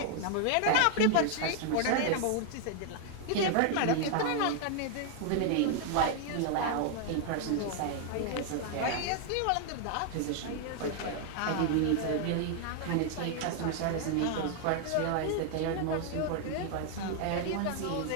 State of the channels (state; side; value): different; both; correlation 0.00